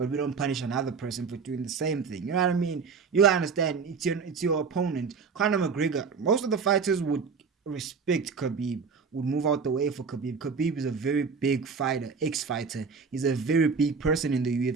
we don't punish another person for doing the same thing. You know what I mean? You gotta understand. It's your opponent. Conor McGregor. Most of the fighters would respect Khabib. Would move out the way for Khabib. Khabib is a very big fighter, ex-fighter. He's a very big person in the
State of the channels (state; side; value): quieter; left; 5.4 dB